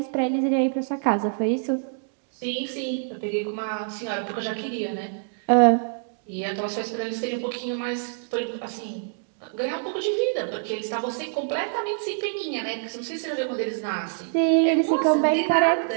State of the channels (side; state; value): left; silent; digital silence